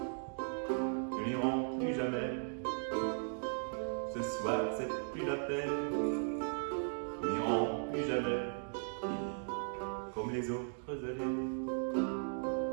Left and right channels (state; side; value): silent; left; digital silence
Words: nous n'irons plus jamais. Ce soir c'est plus la peine, nous n'irons plus jamais. Comme les autres années.